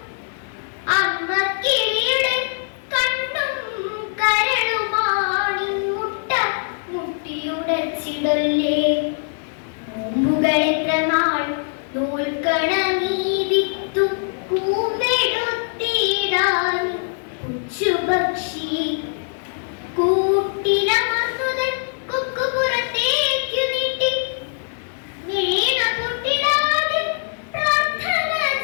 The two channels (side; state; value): right; silent; digital silence